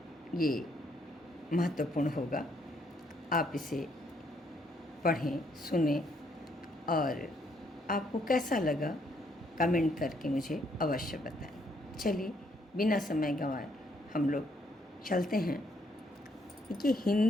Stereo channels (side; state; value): both; normal; correlation 0.71